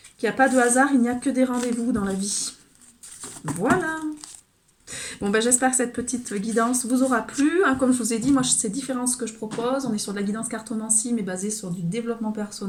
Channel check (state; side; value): identical; both; correlation 1.00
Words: Qu'il n'y a pas de hasard, il n'y a que des rendez-vous dans la vie. Voilà. Bon, j'espère que cette petite guidance vous aura plu. Hein, comme je vous ai dit, moi, c'est différent ce que je propose. On est sur de la guidance cartomancie, mais basée sur du développement